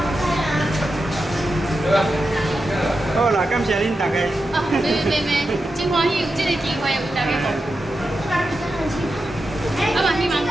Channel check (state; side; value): normal; both; correlation 0.89